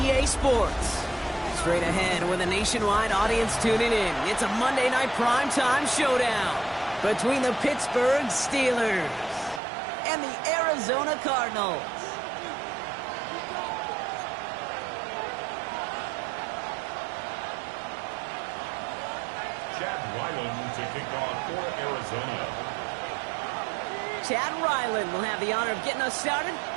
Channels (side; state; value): left; drops out; at 9.6 s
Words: Sports. Straight ahead with a nationwide audience tuning in. It's a Monday Night Primetime showdown between the Pittsburgh Steelers and the Arizona Cardinals. To kick off for Arizona. Chad Ryland will have the honor of getting us started.